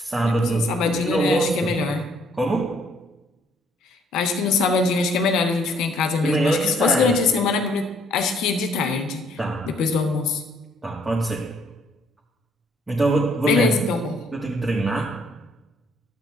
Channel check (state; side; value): normal; both; correlation 0.65